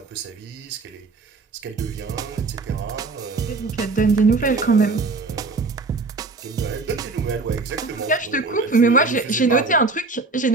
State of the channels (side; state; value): left; quieter; 3.7 dB